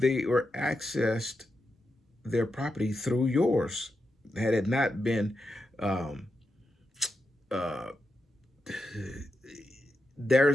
were accessed their property through yours. Had it not been um, uh,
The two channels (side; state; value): both; normal; correlation 0.87